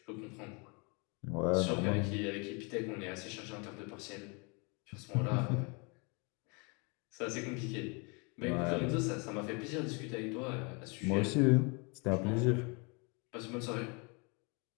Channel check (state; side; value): quieter; right; 31.8 dB